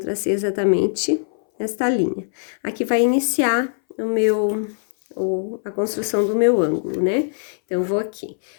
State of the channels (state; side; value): silent; right; 62 dB below the other